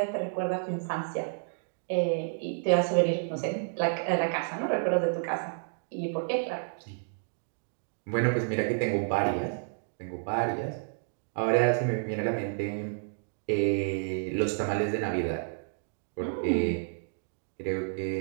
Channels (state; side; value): silent; left; digital silence